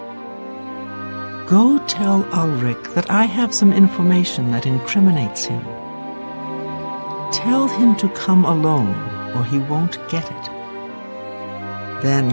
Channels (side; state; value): both; inverted; correlation -1.00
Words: Go tell Ulrich that I have some information that incriminates him. Tell him to come alone, or he won't get it.